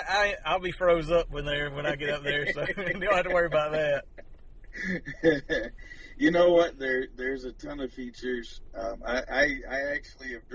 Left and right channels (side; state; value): both; identical; correlation 1.00